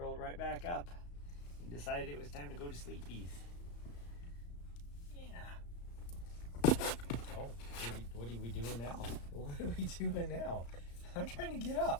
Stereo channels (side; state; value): right; late; 35 ms